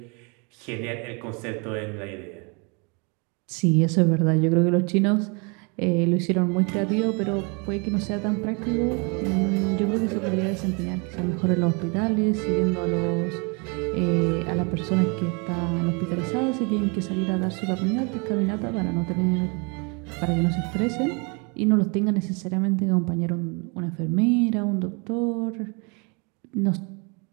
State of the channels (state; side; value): quieter; left; 32.5 dB